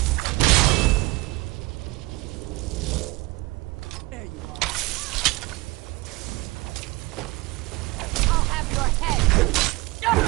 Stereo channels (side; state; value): left; quieter; 22.3 dB